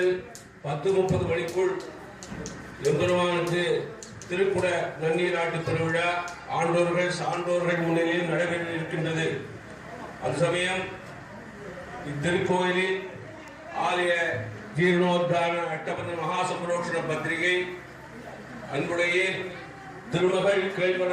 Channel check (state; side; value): identical; both; correlation 1.00